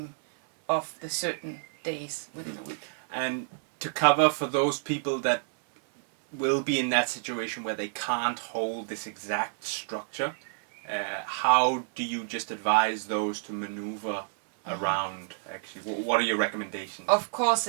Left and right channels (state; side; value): silent; left; 59 dB below the other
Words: of the certain days within a week. And to cover for those people that will be in that situation where they can't hold this exact structure, how do you just advise those to maneuver around, actually? What are your recommendations? Of course,